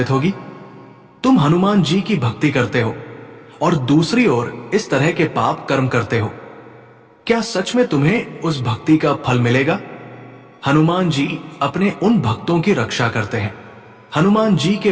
होगी? तुम हनुमान जी की भक्ति करते हो और दूसरी ओर इस तरह के पाप कर्म करते हो। क्या सच में तुम्हें उस भक्ति का फल मिलेगा? हनुमान जी अपने उन भक्तों की रक्षा करते हैं। हनुमान जी के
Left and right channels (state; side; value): identical; both; correlation 1.00